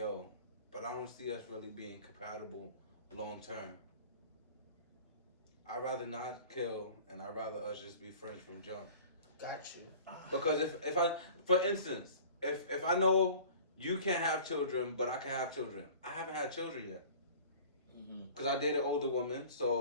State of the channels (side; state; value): both; inverted; correlation -0.44